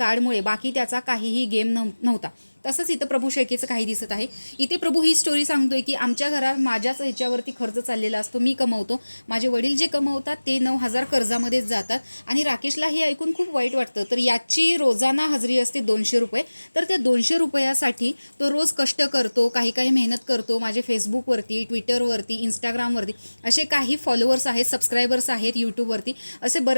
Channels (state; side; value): inverted; both; correlation -1.00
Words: बाकी त्याचा काहीही गेम नव्हता. तसंच इथं प्रभू शेळकेचं काही दिसत आहे. इथे प्रभू ही स्टोरी सांगतोय की आमच्या घरात माझ्याच ह्याच्यावरती खर्च चाललेला असतो, मी कमवतो, माझे वडील जे कमवतात ते 9,000 कर्जामध्येच जातात. आणि राकेशला हे ऐकून खूप वाईट वाटतं. तर याची रोजाना हजेरी असते 200 रुपये. तर त्या 200 रुपयासाठी तो रोज कष्ट करतो, काही काही मेहनत करतो. माझे फेसबुकवरती, ट्विटरवरती, इंस्टाग्रामवरती असे काही फॉलोअर्स आहेत, सबस्क्रायबर्स आहेत, यूट्यूबवरती असे